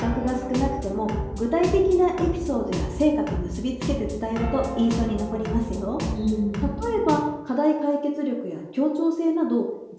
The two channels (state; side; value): identical; both; correlation 1.00